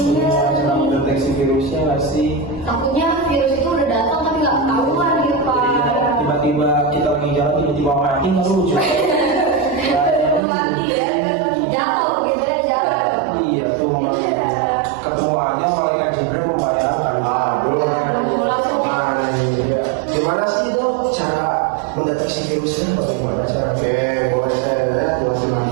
iya. Sedang deteksi virusnya nggak sih? Takutnya virus itu udah datang tapi nggak ketahuan gitu Pak. Iya, tiba-tiba kita lagi jalan tiba-tiba mati nggak lucu. Mati ya, jatuh gitu ya jalan. Iya tuh, ketemu aja malaikat Jibril membayangkan. Iya. Gimana sih dok cara mendeteksi virusnya? Bagaimana caranya? Mulai saya lihat fungsi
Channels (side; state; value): left; drops out; at 10.4 s